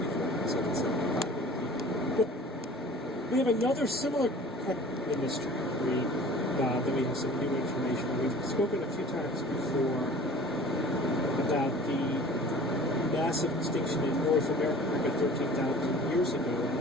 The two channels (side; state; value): both; normal; correlation 0.44